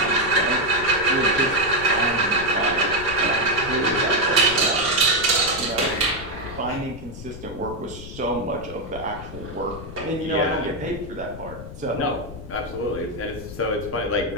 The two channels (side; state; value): left; noise; rumble, 12 dB below the sound